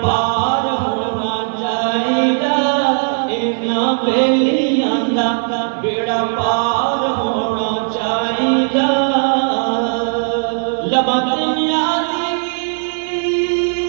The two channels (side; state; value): left; silent; 57 dB below the other